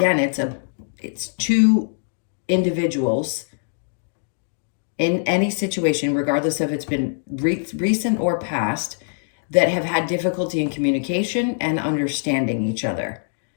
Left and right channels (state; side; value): silent; right; digital silence